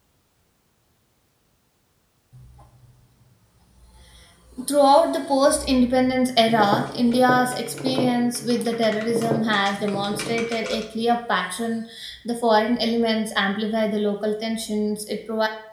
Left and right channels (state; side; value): identical; both; correlation 1.00